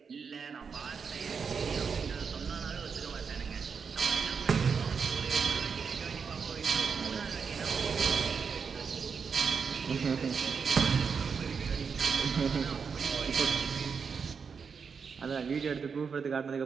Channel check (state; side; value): quieter; left; 5.9 dB